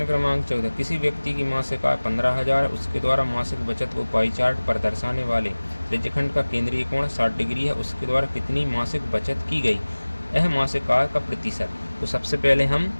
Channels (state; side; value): inverted; both; correlation -1.00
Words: क्रमांक 14, किसी व्यक्ति की मासिक आय 15,000, उसके द्वारा मासिक बचत को पाई चार्ट पर दर्शाने वाले त्रिज्यखंड का केंद्रीय कोण 60 डिग्री है, उसके द्वारा कितनी मासिक बचत की गई? यह मासिक आय का प्रतिशत। तो सबसे पहले हम